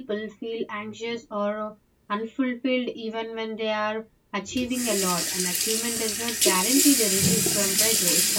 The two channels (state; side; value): identical; both; correlation 1.00